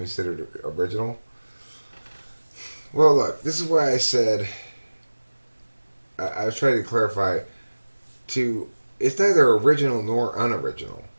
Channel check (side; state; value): both; inverted; correlation -1.00